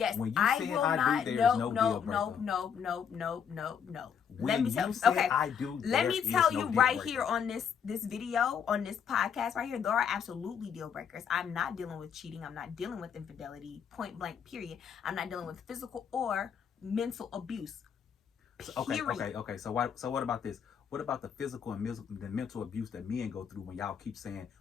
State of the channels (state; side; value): quieter; right; 7.6 dB